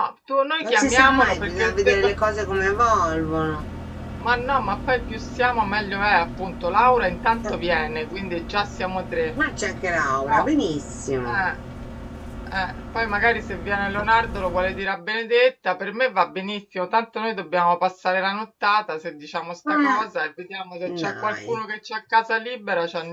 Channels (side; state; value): both; identical; correlation 1.00